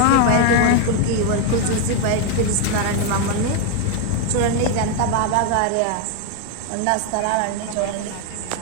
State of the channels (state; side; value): different; both; correlation 0.01